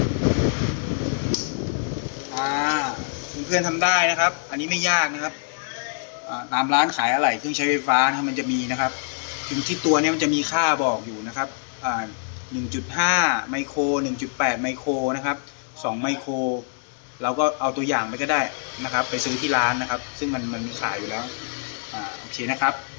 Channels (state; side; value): silent; right; 62 dB below the other